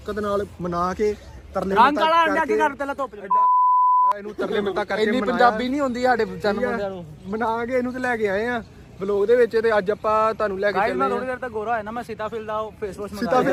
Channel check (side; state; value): both; identical; correlation 1.00